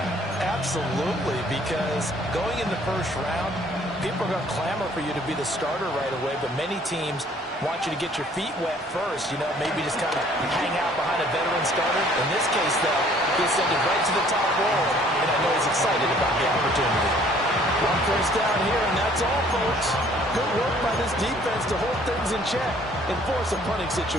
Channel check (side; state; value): both; normal; correlation 0.58